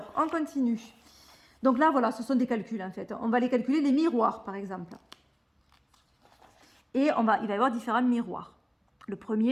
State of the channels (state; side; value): identical; both; correlation 1.00